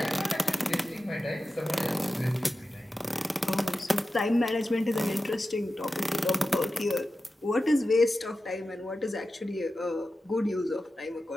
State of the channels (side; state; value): both; normal; correlation 0.93